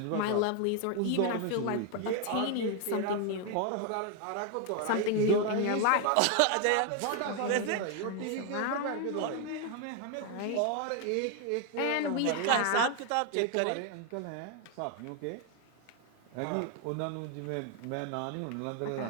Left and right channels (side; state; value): both; different; correlation 0.01